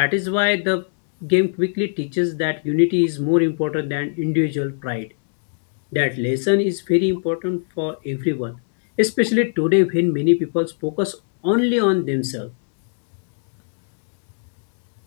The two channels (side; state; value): right; silent; digital silence